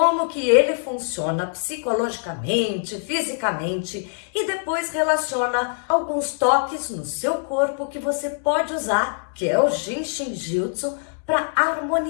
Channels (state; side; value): silent; right; digital silence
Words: que ele funciona psicologicamente, fisicamente e depois relaciona alguns toques no seu corpo que você pode usar, que é o Jinshin Jutsu, para